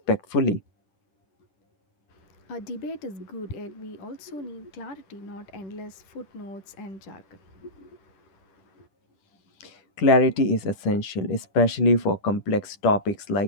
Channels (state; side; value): late; right; 10 ms